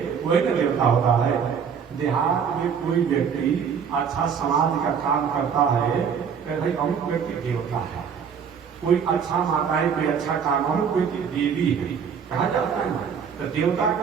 वही न देवता होता है। देहात में कोई व्यक्ति अच्छा समाज का काम करता है तो भाई अमुक व्यक्ति देवता है। कोई अच्छा माताएं कोई अच्छा काम, अमुक व्यक्ति देवी है कहा जाता है ना। तो देवता का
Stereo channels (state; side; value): quieter; left; 7.0 dB